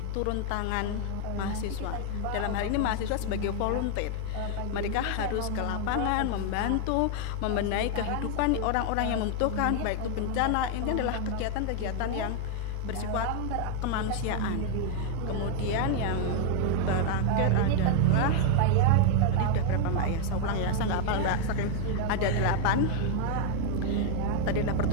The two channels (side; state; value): both; different; correlation 0.00